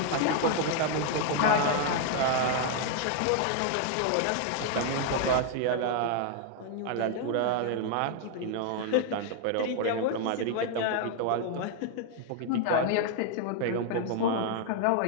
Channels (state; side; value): different; both; correlation 0.00